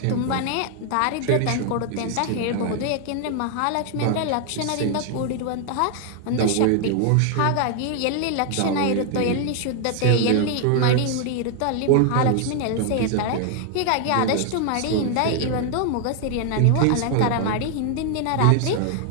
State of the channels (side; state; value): both; different; correlation 0.00